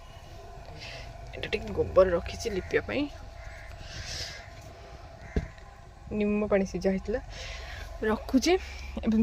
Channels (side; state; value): both; identical; correlation 1.00